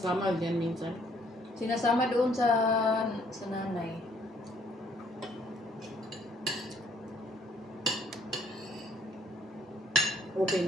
dyan minsan. Sinasama doon sa nanay.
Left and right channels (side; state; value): both; normal; correlation 0.64